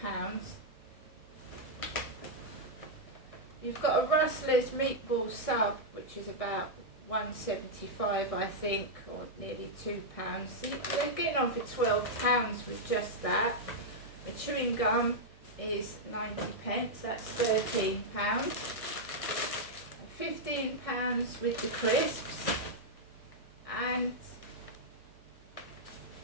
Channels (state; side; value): late; right; 1.6 ms